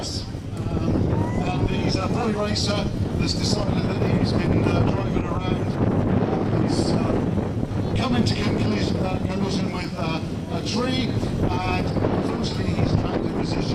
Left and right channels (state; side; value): identical; both; correlation 1.00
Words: And he's a boy racer that's decided that he's been driving around. He's come into collision with a tree, and unfortunately he's trapped in